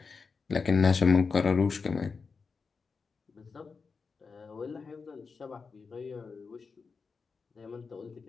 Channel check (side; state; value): right; quieter; 5.0 dB